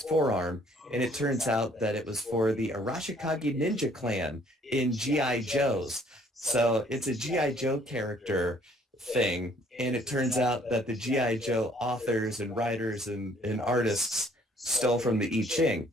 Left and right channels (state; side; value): normal; both; correlation 0.60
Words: forearm. And it turns out that it was for the Arashikage Ninja Clan in G.I. Joe's. So it's a G.I. Joe character thing. And it turns out that the G.I. Joe authors and writers and artists stole from the I Ching.